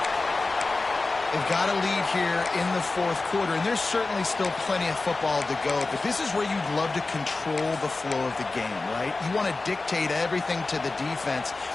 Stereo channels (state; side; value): quieter; right; 3.5 dB